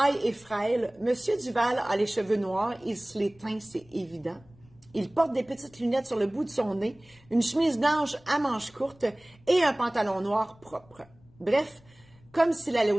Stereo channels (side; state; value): left; noise; rumble, 28 dB below the sound